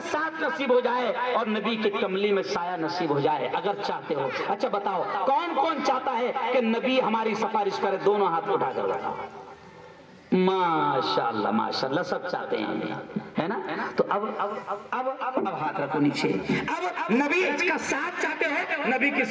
ساتھ نصیب ہو جائے اور نبی کی کملی میں سایہ نصیب ہو جائے، اگر چاہتے ہو. اچھا بتاؤ کون کون چاہتا ہے کہ نبی ہماری سفارش کرے؟ دونوں ہاتھ اٹھا کر بتاؤ. ماشاءاللہ ماشاءاللہ سب چاہتے ہیں، ہے نا؟ تو اب ہاتھ رکھو نیچے. اب نبی کا ساتھ چاہتے ہو، نبی کی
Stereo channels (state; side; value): identical; both; correlation 1.00